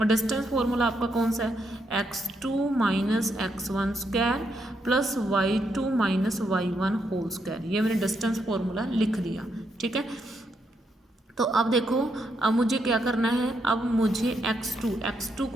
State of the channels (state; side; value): normal; both; correlation 0.79